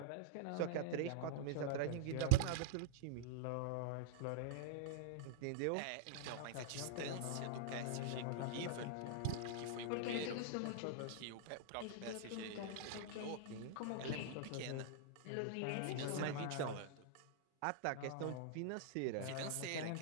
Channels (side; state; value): both; different; correlation -0.02